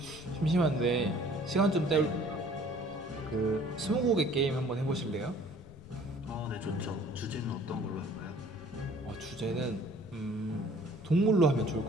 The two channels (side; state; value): left; noise; rumble, 22 dB below the sound